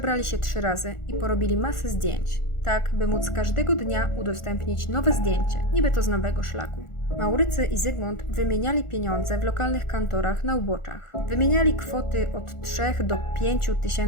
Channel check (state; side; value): late; right; 1.4 ms